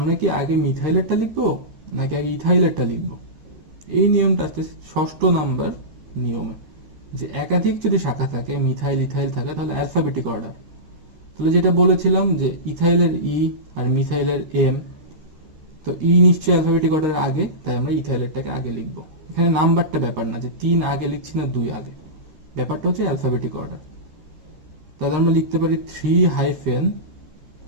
কি আগে মিথাইলেরটা লিখবো নাকি আগে ইথাইলেরটা লিখবো? এই নিয়মটা আসতে 6ষ্ঠ নাম্বার নিয়মে, যে একাধিক যদি শাখা থাকে, মিথাইল ইথাইল থাকে, তাহলে অ্যালফাবেটিক অর্ডার। তাহলে যেটা বলেছিলাম যে ইথাইলের ই আর মিথাইলের এম, তো ই নিশ্চয়ই অ্যালফাবেটিক অর্ডারের আগে, তাই আমরা ইথাইলেরটাকে আগে লিখবো। এখানে নাম্বারটা ব্যাপার না যে 3 আগে লিখছি না 2 আগে, ব্যাপারটা হচ্ছে অ্যালফাবেটিক অর্ডার। তাহলে আমরা লিখতে পারি 3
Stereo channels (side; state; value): left; late; 13 ms